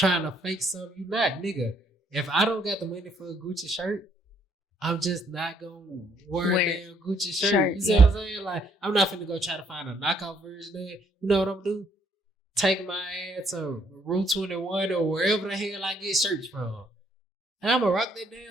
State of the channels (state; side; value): normal; both; correlation 0.68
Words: to fake something you not, nigga. If I don't got the money for a Gucci shirt, I'm just not gonna wear a damn Gucci shirt. You see what I'm saying? Like, I'm not finna go try to find a knockoff version of it. You know what I'm gonna do? Take my ass to Route 21 or wherever the hell I get shirts from. And I'm gonna rock that